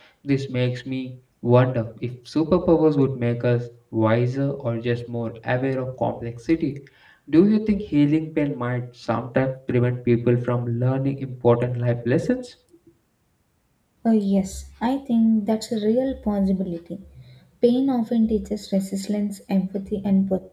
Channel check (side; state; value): both; identical; correlation 1.00